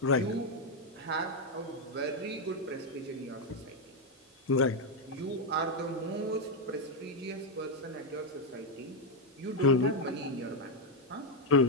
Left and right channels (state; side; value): normal; both; correlation 0.03